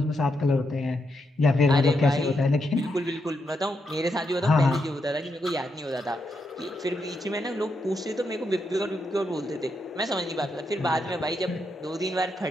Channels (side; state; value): both; normal; correlation 0.82